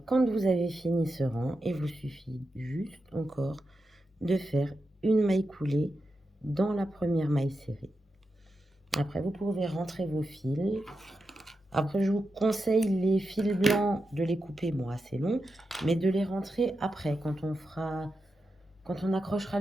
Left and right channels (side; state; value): both; normal; correlation 0.88